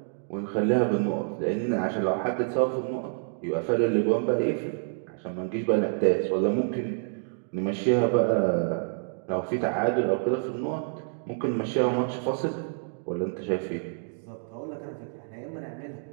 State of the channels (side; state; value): left; silent; digital silence